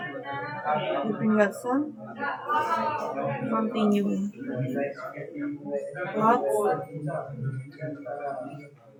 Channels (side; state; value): both; identical; correlation 1.00